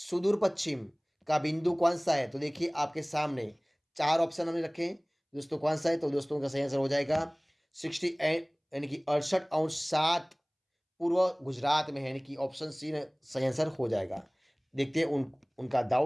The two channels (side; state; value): both; identical; correlation 1.00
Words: पश्चिम का बिंदु कौन सा है? तो देखिए, आपके सामने चार ऑप्शन हमने रखे हैं दोस्तों। कौन सा है? तो दोस्तों, का सही आंसर हो जाएगा 68, यानी कि 68 अंश 7 पूर्व गुजरात में है, यानी कि ऑप्शन सी सही आंसर हो जाएगा। देखते हैं उनका